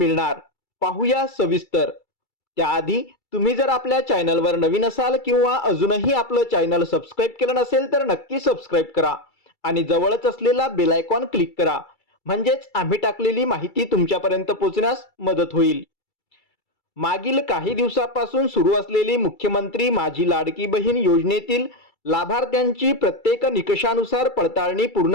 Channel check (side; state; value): right; late; 2.3 ms